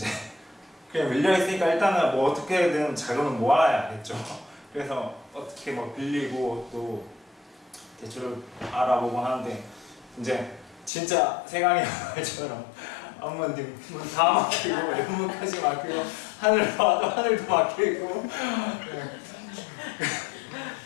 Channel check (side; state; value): right; drops out; at 10.9 s